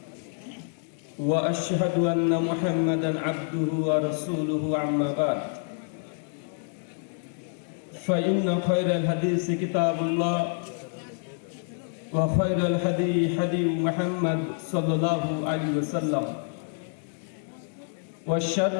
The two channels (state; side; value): silent; right; 60 dB below the other